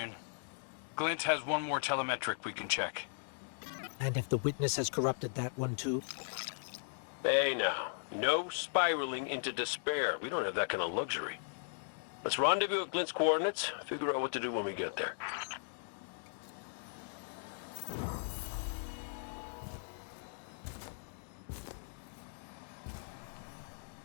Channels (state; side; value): silent; right; digital silence